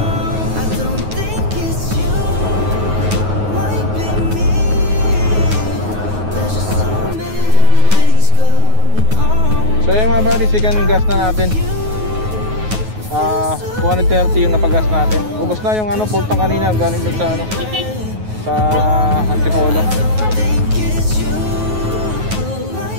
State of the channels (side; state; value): left; late; 9.4 ms